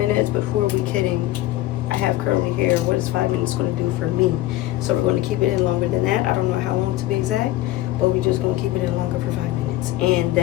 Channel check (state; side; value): quieter; right; 15.8 dB